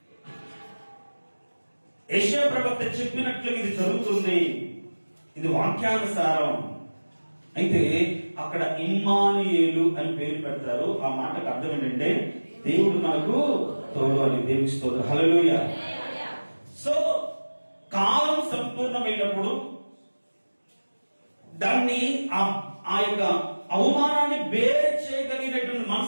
యెషయా ప్రవక్త చెప్పినట్లు ఇది జరుగుతుంది, ఇది వాక్యానుసారం. అయితే అక్కడ ఇమ్మానుయేలు అని పేరు పెడతారు. ఆ మాటకు అర్థం ఏంటంటే, దేవుడు మనకు తోడు అని. దేవుని స్తోత్రం, హల్లెలూయా. సో కాలం సంపూర్ణమైనప్పుడు దాన్ని ఆ యొక్క అవమానాన్ని బేర్ చేయగలిగినటువంటి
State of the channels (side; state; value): both; inverted; correlation -1.00